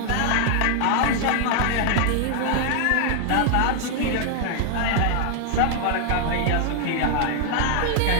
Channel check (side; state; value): both; different; correlation 0.00